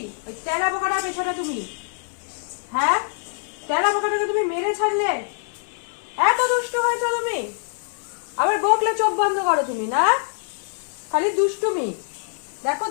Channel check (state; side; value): silent; right; 56 dB below the other